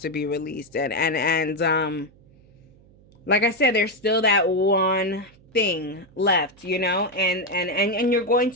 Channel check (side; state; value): right; noise; hum, 27 dB below the sound